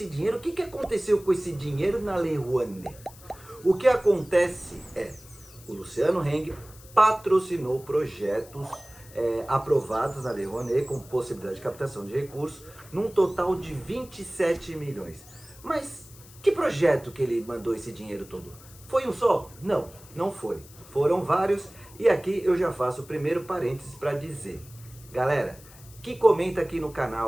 dinheiro, o que aconteceu com esse dinheiro na Lei Rouanet? O que acontece é, o Luciano Heng patrocinou projetos aprovados na Lei Rouanet com possibilidade de captação de recursos, num total de 27 milhões. Mas que projeto que ele mandou esse dinheiro todo? Foi um só? Não, não foi. Foram vários e aqui eu já faço o primeiro parênteses para dizer. Galera, que comenta aqui no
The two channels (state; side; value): noise; left; hiss, 21 dB below the sound